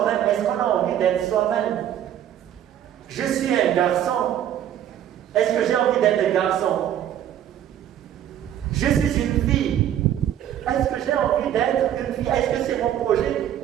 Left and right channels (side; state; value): left; quieter; 10.8 dB